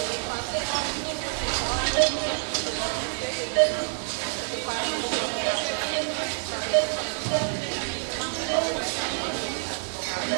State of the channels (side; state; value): left; silent; 57 dB below the other